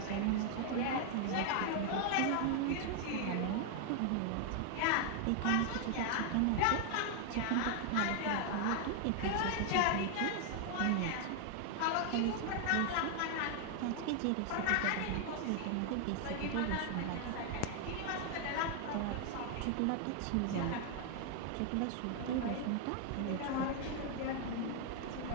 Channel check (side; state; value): both; different; correlation 0.00